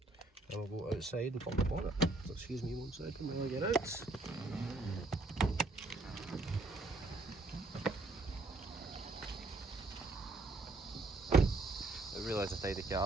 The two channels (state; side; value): quieter; left; 3.0 dB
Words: And we'll go outside and pop the bonnet. So excuse me one second while I get out. I realise it's a tidy